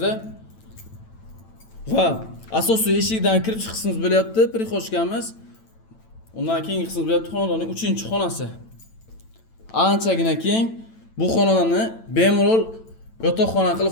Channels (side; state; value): right; late; 9.0 ms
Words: va asosiy eshikdan kirish qismimiz bo'lyapti, prixoshkamiz. Undan keyingi qismimiz bo'lyapti xonadonning 3-xonasi. Anchagina keng. Bu xonadonni bemalol yotoqxona